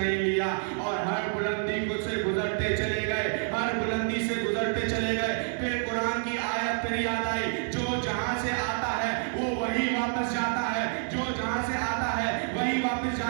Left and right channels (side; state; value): left; silent; 59 dB below the other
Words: لیا، اور ہر بلندی سے گزرتے چلے گئے، ہر بلندی سے گزرتے چلے گئے۔ پھر قرآن کی آیت پھر یاد آئی، جو جہاں سے آتا ہے وہ وہی واپس جاتا ہے، جو جہاں سے آتا ہے وہی واپس